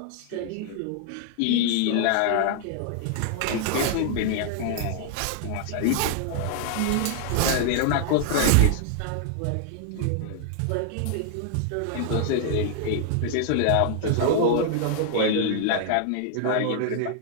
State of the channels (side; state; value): both; different; correlation 0.00